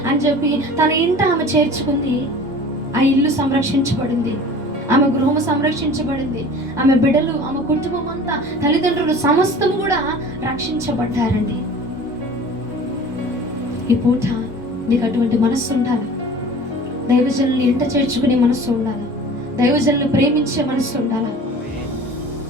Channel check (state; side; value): normal; both; correlation 0.42